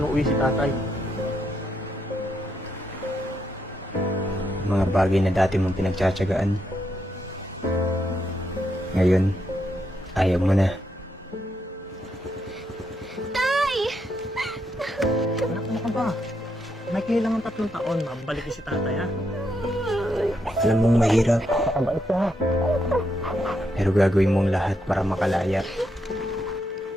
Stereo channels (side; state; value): both; normal; correlation 0.80